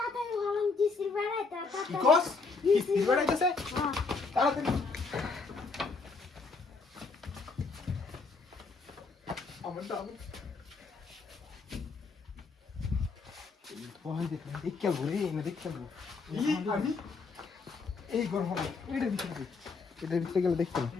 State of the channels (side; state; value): right; quieter; 4.3 dB